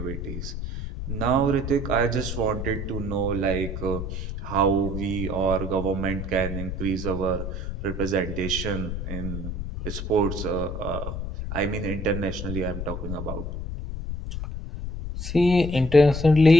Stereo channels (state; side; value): noise; left; rumble, 5 dB below the sound